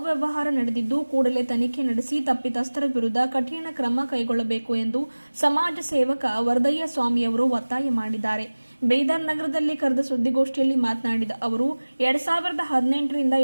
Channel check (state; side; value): inverted; both; correlation -1.00